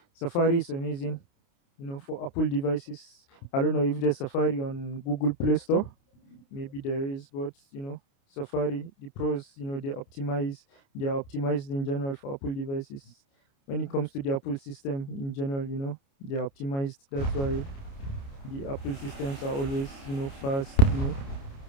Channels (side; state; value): right; late; 29 ms